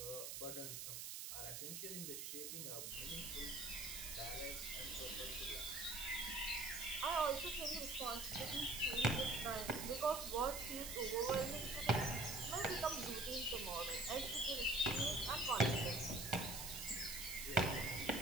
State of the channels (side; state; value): right; noise; hiss, 5 dB below the sound